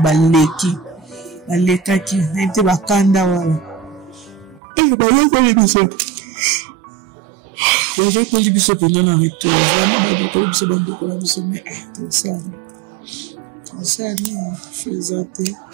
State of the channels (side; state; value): left; drops out; at 4.6 s